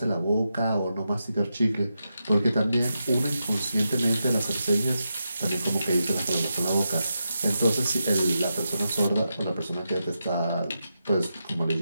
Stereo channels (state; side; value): inverted; both; correlation -0.87